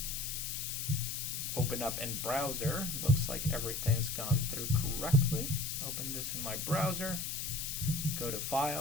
Open up in browser. Looks like everything's gone through correctly. Open this in my browser. Go to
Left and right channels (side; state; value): left; noise; hiss, 3 dB below the sound